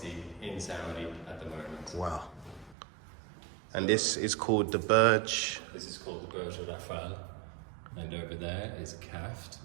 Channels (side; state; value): left; drops out; at 2.8 s